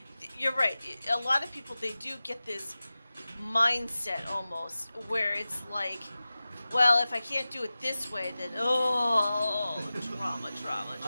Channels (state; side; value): inverted; both; correlation -0.96